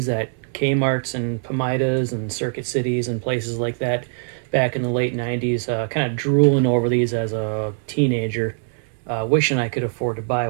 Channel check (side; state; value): left; silent; 64 dB below the other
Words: at Kmart's and Pomidas and Circuit Cities and places like that back in the late 90s, kind of drooling over these as a teenager, wishing I could afford to buy